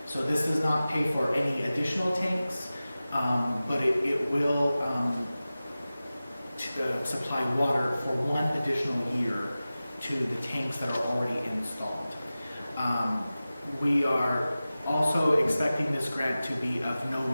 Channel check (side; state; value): both; inverted; correlation -0.96